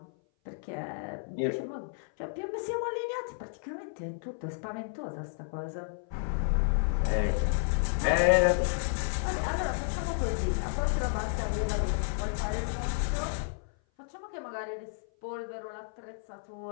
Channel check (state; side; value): silent; right; 56 dB below the other